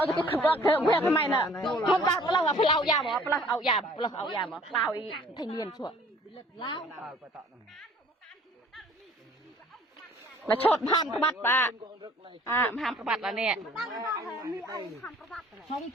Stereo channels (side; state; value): both; normal; correlation 0.54